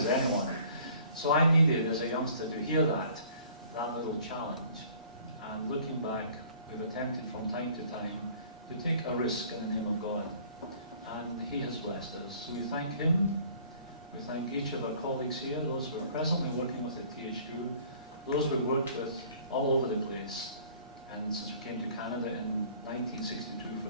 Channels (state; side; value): inverted; both; correlation -0.53